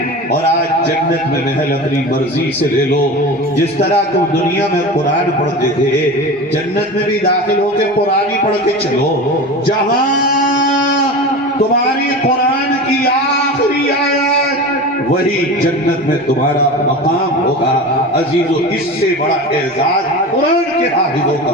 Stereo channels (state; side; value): normal; both; correlation 0.30